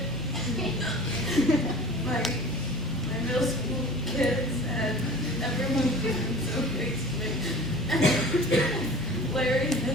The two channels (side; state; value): both; normal; correlation 0.41